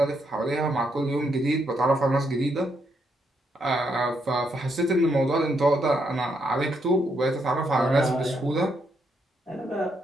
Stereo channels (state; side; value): normal; both; correlation 0.77